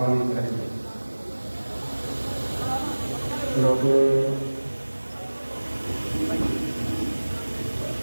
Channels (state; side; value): inverted; both; correlation -1.00